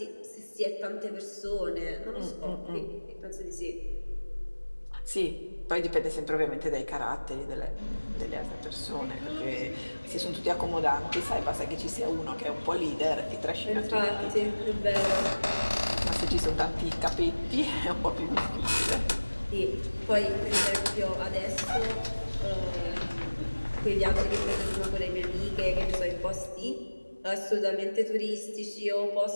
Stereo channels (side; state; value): both; inverted; correlation -1.00